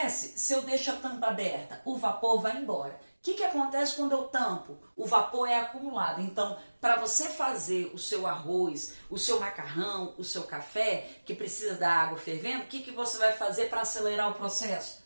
se eu deixo a tampa aberta? O vapor vai embora. O que acontece quando eu tampo? O vapor é acumulado. Então, para você fazer o seu arroz, o seu macarrão, o seu café, que precisa da água fervendo, o que você vai fazer para acelerar o processo?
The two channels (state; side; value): inverted; both; correlation -1.00